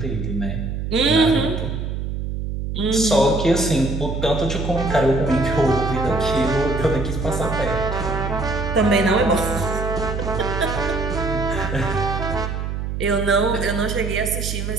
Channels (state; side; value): noise; right; hum, 4 dB below the sound